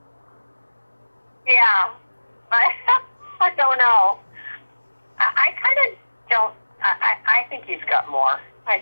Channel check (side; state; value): both; inverted; correlation -1.00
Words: Yeah. I don't know. I kind of don't. I think he's got more. I